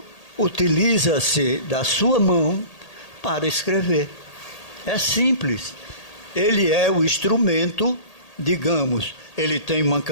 utiliza-se da sua mão para escrever. É simples. Ele é o instrumento, digamos, ele tem uma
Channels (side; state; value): right; late; 1.8 ms